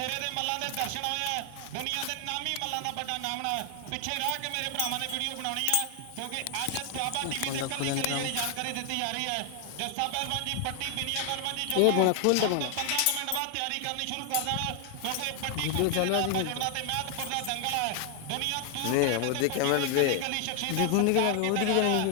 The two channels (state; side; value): different; both; correlation 0.00